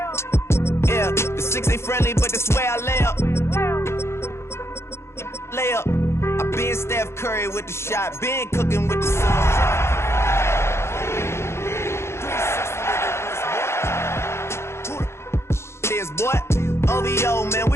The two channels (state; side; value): late; right; 0.13 ms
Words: Yeah, the 6 ain't friendly, but that's where I lay up. Lay up. I been Steph Curry with the shot, been cooking with the sauce. Boy, OVO, man,